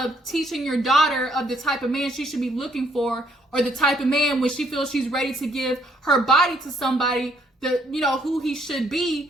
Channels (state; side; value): normal; both; correlation 0.68